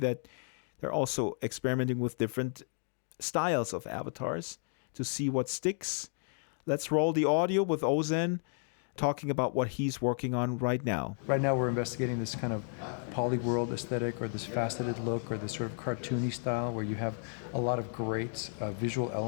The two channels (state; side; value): silent; right; 56 dB below the other